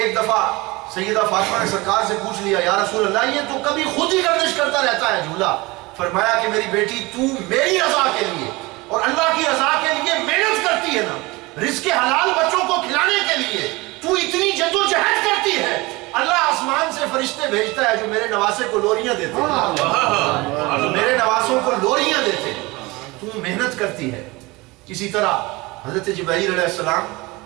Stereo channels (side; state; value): left; quieter; 23.0 dB